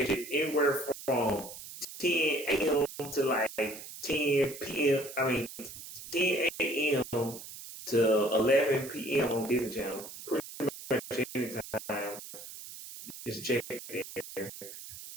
it anywhere from 10 a.m. to like 10 p.m. 10 a.m. to 11 p.m. on Disney Channel. Pretty much anytime. Just check it there.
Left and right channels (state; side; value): noise; right; hiss, 13 dB below the sound